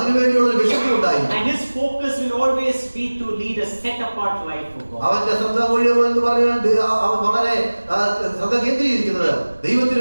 ഒരു വിശുദ്ധി ഉണ്ടായിരിക്കും. And his focus will always be to lead a set apart life for God. അവന്റെ ശ്രദ്ധ മുഴുവൻ എന്ന് പറഞ്ഞാൽ അവൻ വളരെ ശ്രദ്ധ കേന്ദ്രീകരിക്കുന്നത് ദൈവത്തിന്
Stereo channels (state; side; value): inverted; both; correlation -1.00